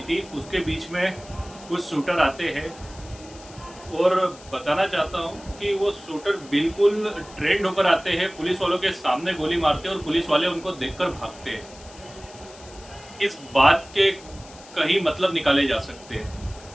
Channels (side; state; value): left; noise; hiss, 20 dB below the sound